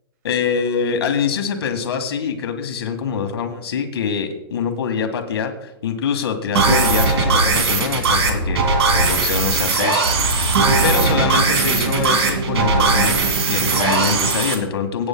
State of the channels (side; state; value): both; normal; correlation -0.17